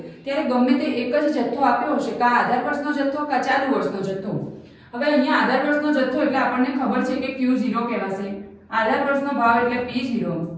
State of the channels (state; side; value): identical; both; correlation 1.00